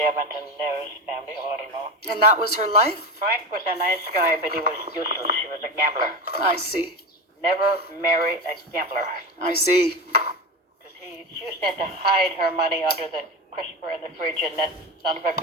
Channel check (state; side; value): normal; both; correlation 0.22